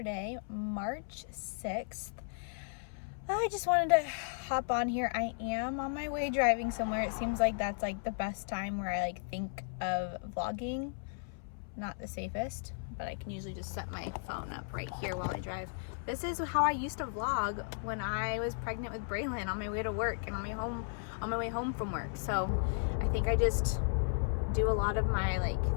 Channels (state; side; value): silent; right; 54 dB below the other